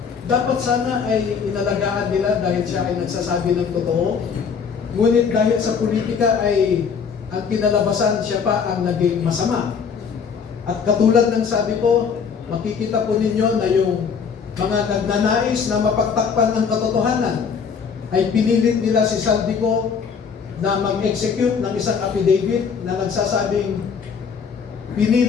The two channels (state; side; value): quieter; right; 6.3 dB